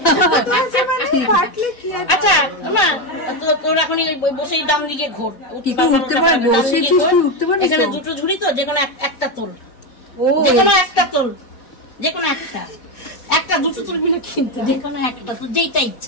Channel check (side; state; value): right; late; 4.1 ms